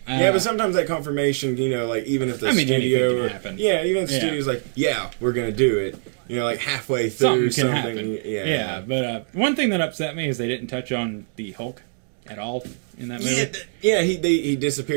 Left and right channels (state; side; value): silent; left; digital silence